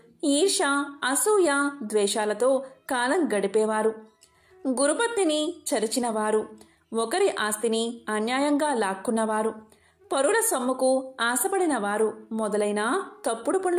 ఈర్ష, అసూయ, ద్వేషాలతో కాలం గడిపేవారు, గురుపత్నిని చరిచినవారు, ఒకరి ఆస్తిని అన్యాయంగా లాక్కున్నవారు, పరుల సొమ్ముకు ఆశపడిన వారు మొదలైన తప్పుడు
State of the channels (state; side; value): identical; both; correlation 1.00